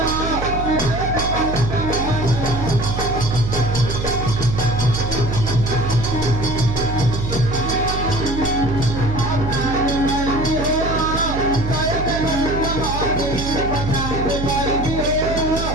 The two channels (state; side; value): noise; right; hum, 4 dB below the sound